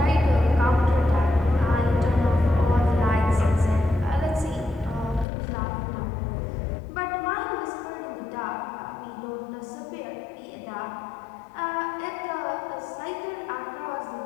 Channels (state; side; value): drops out; right; at 5.2 s